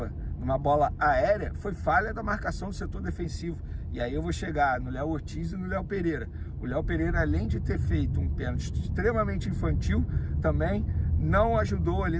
numa bola aérea, foi falha da marcação do setor defensivo. E aí eu vou chegar no Léo Ortiz e no Léo Pereira. O Léo Pereira, além de ter feito um pênalti extremamente infantil, também não ajudou ali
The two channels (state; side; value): identical; both; correlation 1.00